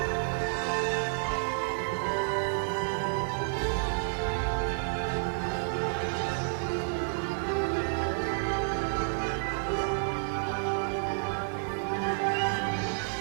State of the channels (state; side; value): silent; left; digital silence